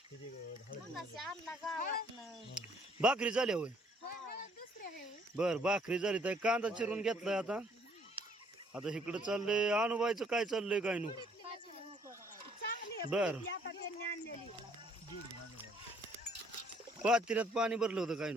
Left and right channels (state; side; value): normal; both; correlation 0.63